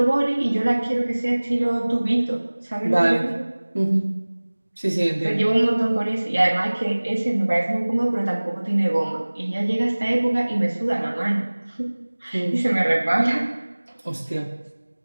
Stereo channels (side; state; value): both; inverted; correlation -1.00